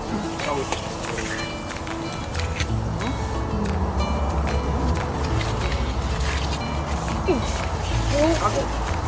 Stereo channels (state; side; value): identical; both; correlation 1.00